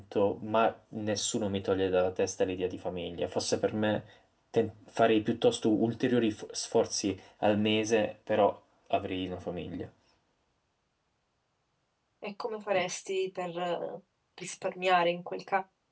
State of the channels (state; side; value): identical; both; correlation 1.00